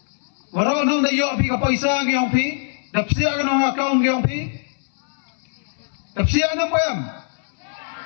wara nong da yo pi ka paisa gi ong pi dapsia ka nong account gi ong pi dapsia na payam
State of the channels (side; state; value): right; silent; 61 dB below the other